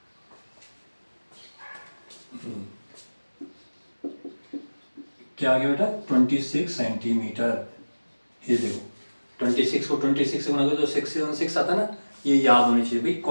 क्या आ गया बेटा 26 सेंटीमीटर, ये देखो 26 को 26 से गुना करो तो 676 आता है ना, ये याद होनी चाहिए भाई,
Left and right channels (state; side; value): inverted; both; correlation -1.00